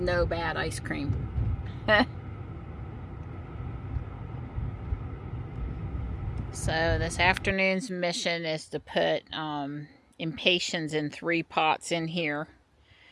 bad ice cream. So this afternoon's mission is to put impatiens in 3 pots in here.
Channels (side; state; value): both; identical; correlation 1.00